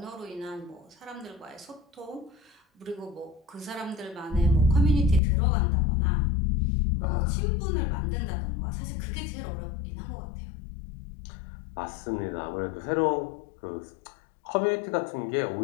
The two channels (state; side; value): drops out; right; at 5.2 s